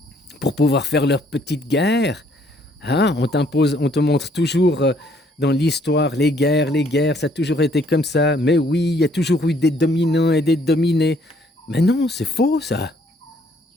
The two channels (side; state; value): both; normal; correlation 0.64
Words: Pour pouvoir faire leur petite guerre. Hein? On t'impose, on te montre toujours dans l'histoire les guerres, ça a toujours été comme ça. Mais oui, il y a toujours eu des dominants et des dominés. Mais non, c'est faux, ça.